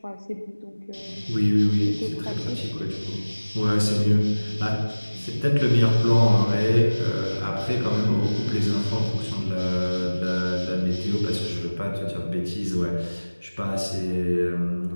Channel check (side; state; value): both; inverted; correlation -1.00